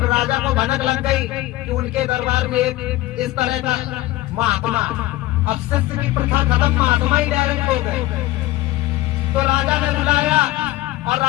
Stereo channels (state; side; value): quieter; right; 17.5 dB